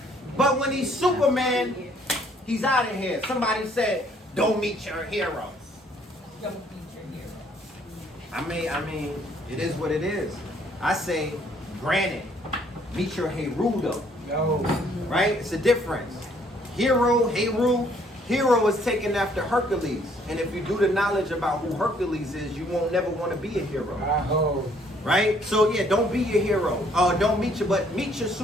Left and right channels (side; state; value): both; normal; correlation 0.64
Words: But when he's Superman, he's out of here. Somebody said, "Don't meet your heroes." Don't beat your hero. I mean, it is what it is. I say, granted, meet your Herudo. Right? It's a difference. Hero is taken after Hercules. And if you do the knowledge about who Hercules is, you won't never want to be a hero. Right? So yeah, don't be your hero. Don't meet your